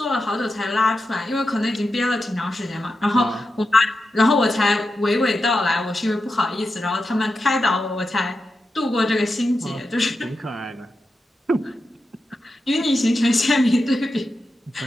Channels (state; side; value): normal; both; correlation 0.89